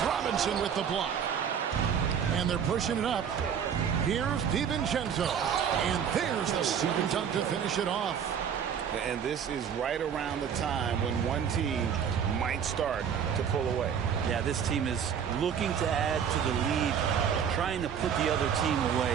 Robinson with the block. And they're pushing it up. Here's DiVincenzo. And there's the second dunk to finish it off. And this is right around the time when one team might start to pull away. Yeah, this team is looking to add to the lead, trying to put the other team away,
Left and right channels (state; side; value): quieter; left; 7.9 dB